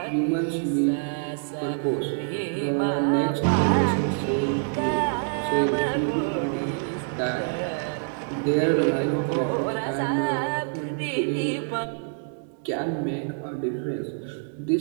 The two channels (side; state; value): left; silent; 61 dB below the other